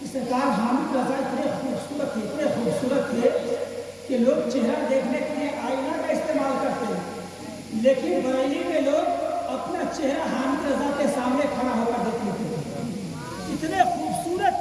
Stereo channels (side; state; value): both; identical; correlation 1.00